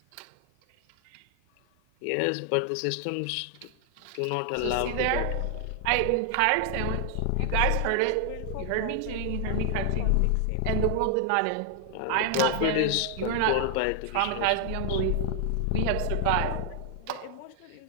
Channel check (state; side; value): different; both; correlation 0.00